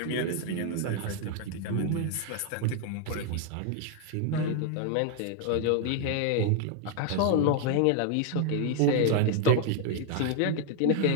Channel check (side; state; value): both; different; correlation 0.00